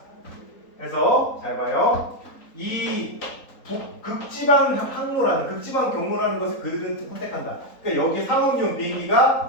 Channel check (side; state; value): right; late; 3.9 ms